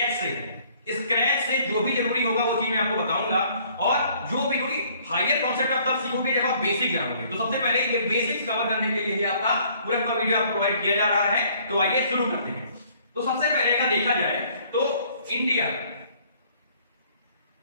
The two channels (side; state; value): both; inverted; correlation -0.60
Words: से जो भी जरूरी होगा वो चीज मैं आपको बताऊंगा, और जो भी हायर कॉन्सेप्ट आप तब सीखोगे जब आप बेसिक जानोगे। तो सबसे पहले ये बेसिक्स कवर करने के लिए आपका पूरा वीडियो आपको प्रोवाइड किया जा रहा है। तो आइए शुरू करते हैं। तो सबसे पहले अगर देखा जाए तो इंडिया